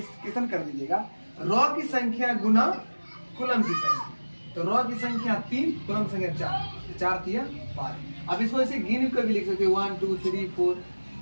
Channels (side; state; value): both; inverted; correlation -1.00